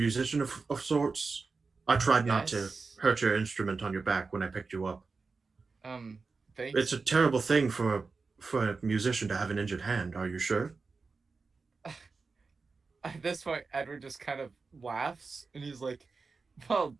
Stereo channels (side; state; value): left; quieter; 4.4 dB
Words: of sorts. I tried not to Yes. hurt your instrument on your back when I picked you up. Thanks. It's a terrible thing for a musician to have an injured hand. Are you sure? At this point, Edward just kind of laughs and he's like, "Well,